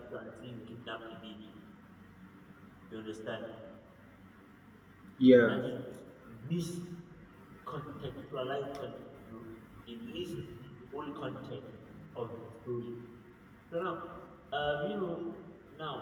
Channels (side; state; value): both; identical; correlation 1.00